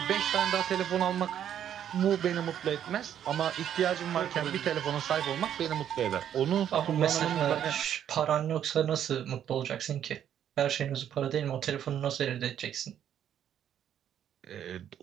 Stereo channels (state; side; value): quieter; left; 9.9 dB